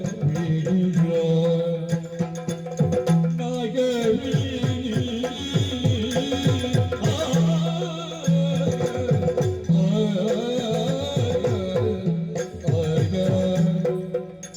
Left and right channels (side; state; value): both; identical; correlation 1.00